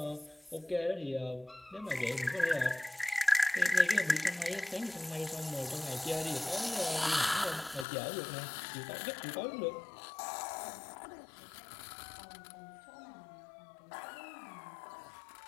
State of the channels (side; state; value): right; drops out; at 7.9 s